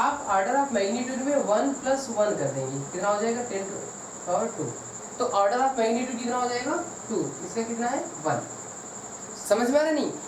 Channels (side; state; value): both; identical; correlation 1.00